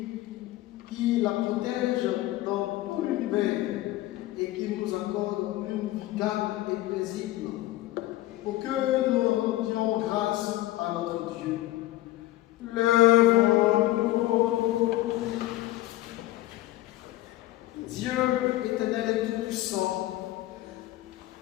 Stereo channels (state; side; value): quieter; right; 16.5 dB